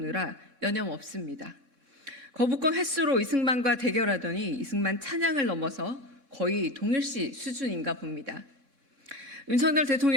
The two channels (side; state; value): left; late; 4.1 ms